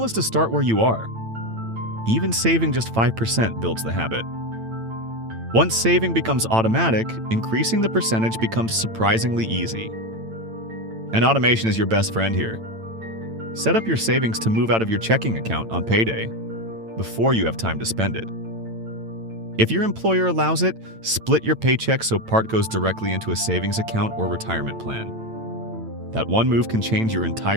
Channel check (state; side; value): late; left; 8.9 ms